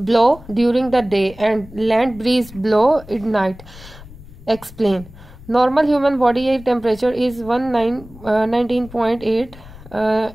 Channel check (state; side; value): noise; left; rumble, 19 dB below the sound